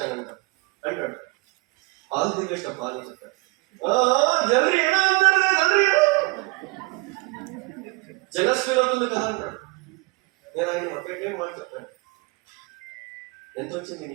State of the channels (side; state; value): left; quieter; 26.7 dB